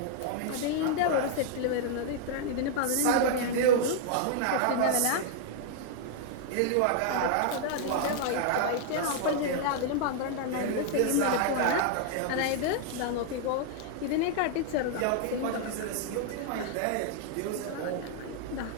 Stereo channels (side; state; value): both; different; correlation 0.00